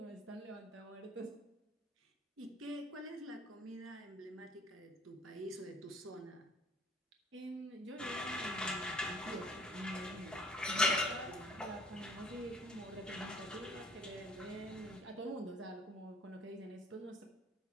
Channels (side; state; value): both; normal; correlation 0.53